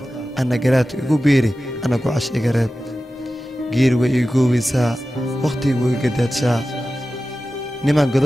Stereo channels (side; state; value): both; normal; correlation 0.94